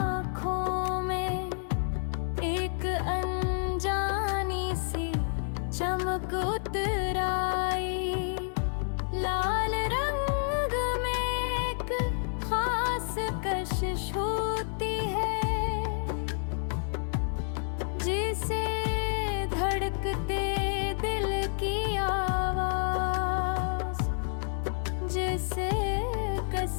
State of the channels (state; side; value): silent; right; 58 dB below the other